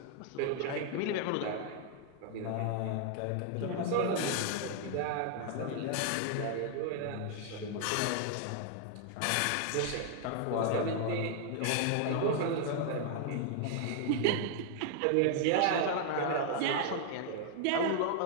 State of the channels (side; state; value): both; different; correlation 0.00